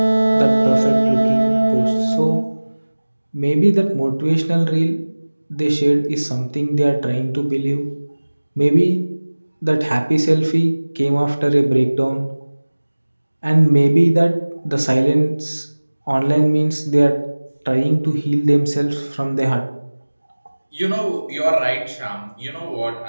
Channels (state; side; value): inverted; both; correlation -1.00